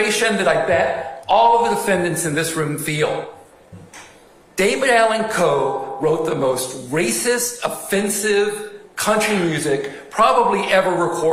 that I bet all of the defendants in this room feel. David Allan Coe wrote the most racist, offensive country music probably ever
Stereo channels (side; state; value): both; identical; correlation 1.00